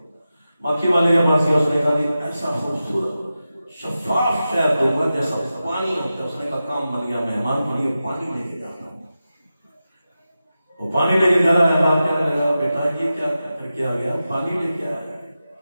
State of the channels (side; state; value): both; inverted; correlation -0.92